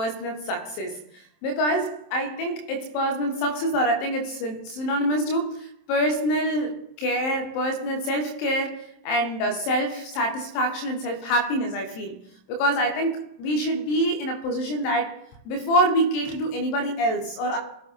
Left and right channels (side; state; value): right; late; 27 ms